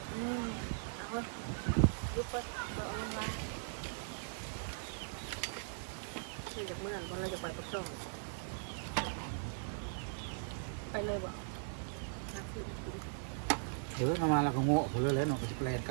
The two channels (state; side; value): silent; left; 52 dB below the other